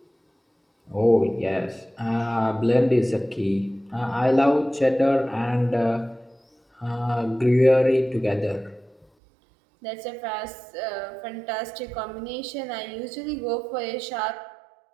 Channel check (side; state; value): left; drops out; at 9.1 s